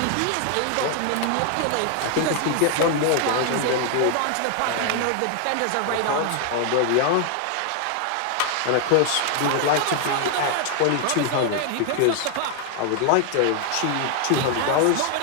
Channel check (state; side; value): different; both; correlation 0.00